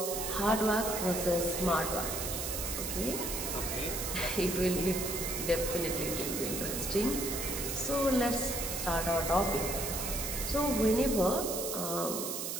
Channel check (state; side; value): noise; right; hiss, 3 dB below the sound